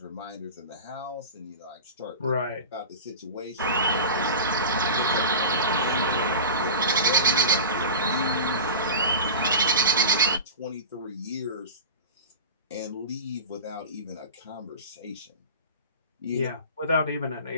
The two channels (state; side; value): inverted; both; correlation -0.31